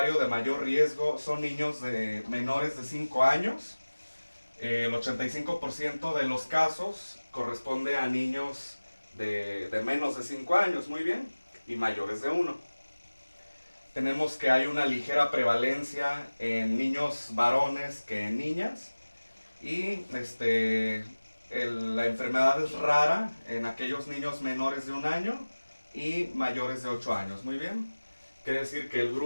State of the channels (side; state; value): both; inverted; correlation -1.00